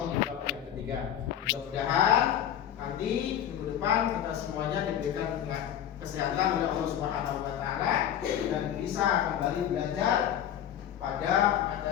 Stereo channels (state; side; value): quieter; right; 10.2 dB